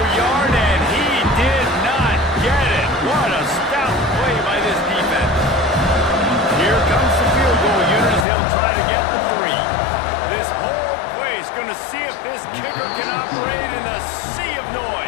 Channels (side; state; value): right; drops out; at 8.2 s